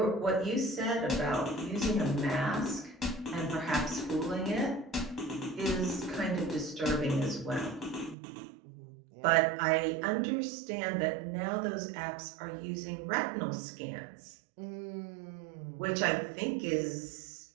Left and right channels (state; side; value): drops out; left; at 8.2 s